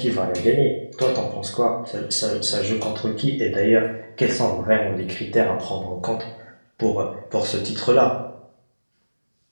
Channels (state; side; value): inverted; both; correlation -1.00